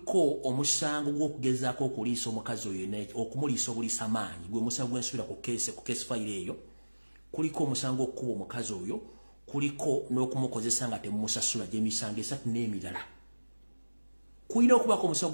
omusango gw'okugezaako okuliisa omukazi oyo okumuliisa obuliisa amaanyi gwe musango gw'ensuubira ku keesi fayiro eyo kuliko omusango okukuba omukazi oyo kuliko n'okumukozesa nga temumusasula gy'emisango 3 n'emirala. Kulina okubaako omusango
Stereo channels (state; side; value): inverted; both; correlation -1.00